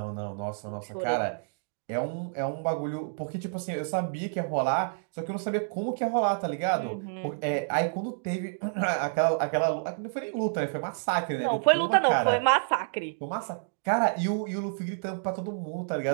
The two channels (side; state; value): left; silent; digital silence